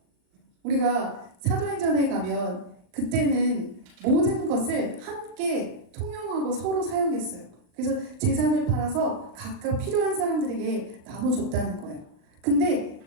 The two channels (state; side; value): late; left; 39 ms